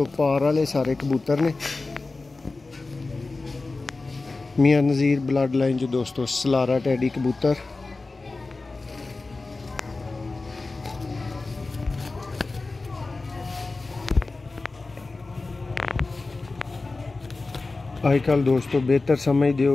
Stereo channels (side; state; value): right; quieter; 3.5 dB